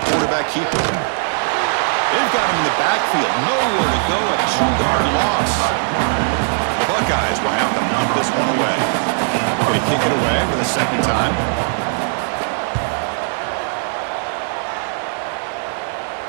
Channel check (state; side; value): silent; left; digital silence